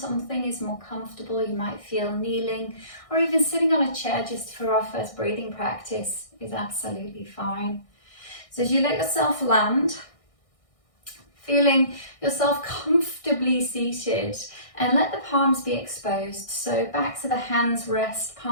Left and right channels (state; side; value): late; right; 1.6 ms